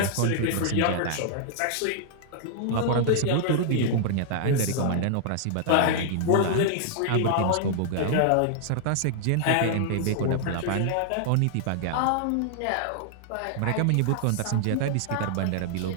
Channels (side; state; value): both; different; correlation -0.01